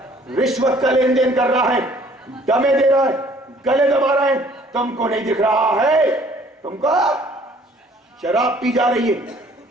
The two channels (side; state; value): both; normal; correlation 0.57